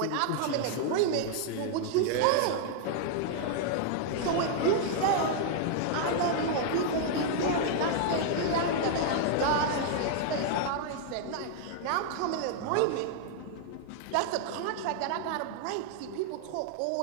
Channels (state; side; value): different; both; correlation 0.00